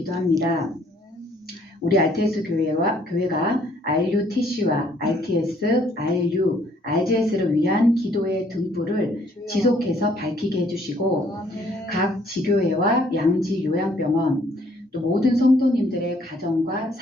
우리 RTS 교회가 RUTC와 RTS, RU, RGS를 위한 기도의 등불을 지속해서 밝히게 해주시고 각 지교회와 양지 요양병원 또 모든 성도님들의 가정과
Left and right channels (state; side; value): normal; both; correlation 0.64